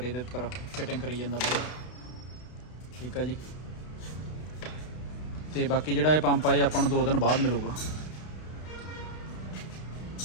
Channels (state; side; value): late; right; 32 ms